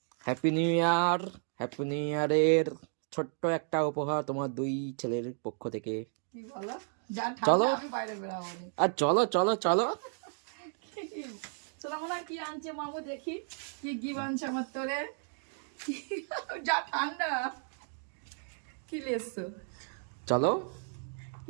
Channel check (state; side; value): silent; left; 56 dB below the other